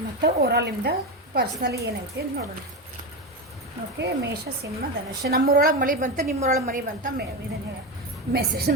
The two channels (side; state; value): both; normal; correlation 0.17